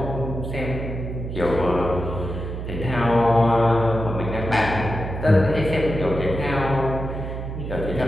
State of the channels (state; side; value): noise; right; hum, 6 dB below the sound